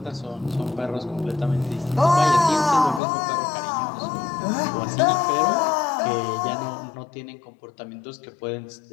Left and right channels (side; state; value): right; drops out; at 3.0 s